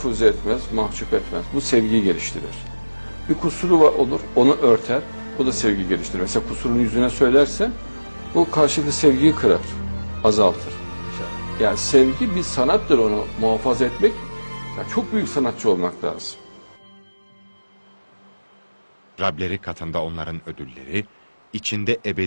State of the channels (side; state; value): both; inverted; correlation -1.00